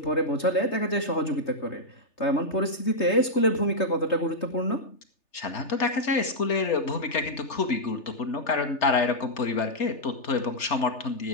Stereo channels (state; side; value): late; right; 3.3 ms